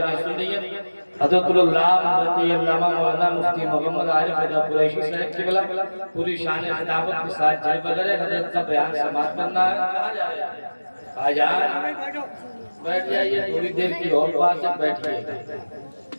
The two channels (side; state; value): both; inverted; correlation -1.00